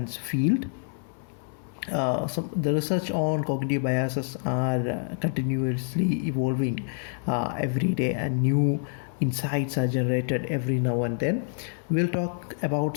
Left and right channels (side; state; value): right; silent; 60 dB below the other